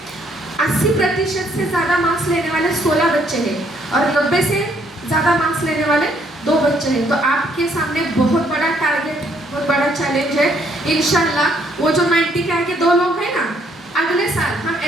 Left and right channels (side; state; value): both; normal; correlation 0.68